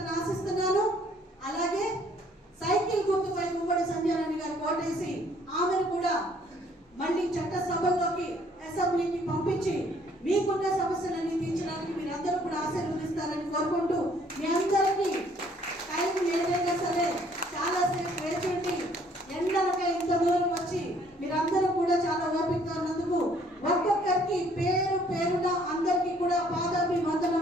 ఆశిస్తున్నాను. అలాగే సైకిల్ గుర్తుపై ఉమ్మడి సంజయరాణి గారు ఓటేసి ఆమెను కూడా మళ్ళీ చట్టసభల్లోకి అసెంబ్లీకి పంపించి మీకున్న సమస్యలన్నీ తీర్చడానికి మీరందరూ కూడా ఆశీర్వదిస్తారని కోరుకుంటూ మీ అందరికీ టైం ఏదైనా సరే చాలాసేపు వేచి ఎండలకై ఇంత దూరం వచ్చి మీరందరూ కూడా చాలా ఓపికగా ఉన్నందుకు ఒక్కొక్కరికి పేరు పేరున అందరికీ కూడా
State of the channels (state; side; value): normal; both; correlation 0.62